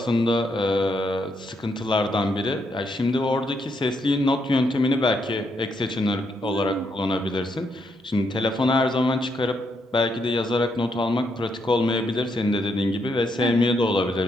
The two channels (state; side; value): normal; both; correlation 0.77